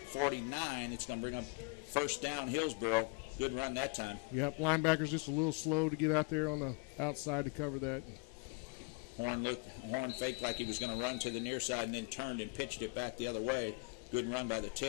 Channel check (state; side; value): quieter; right; 29.3 dB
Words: It's going to bring up first down Hillsboro. Good run that time. Yep, linebacker's just a little slow to get out there on the outside to cover that. Horn faked like he was going to run to the near side and then turned and pitched it back the other way. Good run by the